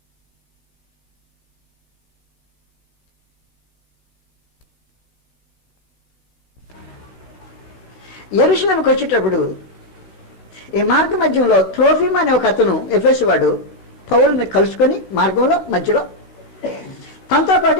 యెరూషలేముకి వచ్చేటప్పుడు ఈ మార్గ మధ్యంలో త్రోఫిమ్ అనే ఒక అతను ఎఫెసు వాడు పౌలుని కలుసుకొని మార్గంలో మధ్యలో తనతో పాటు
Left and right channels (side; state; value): right; late; 16 ms